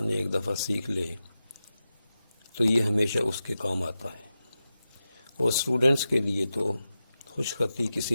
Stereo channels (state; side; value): inverted; both; correlation -0.92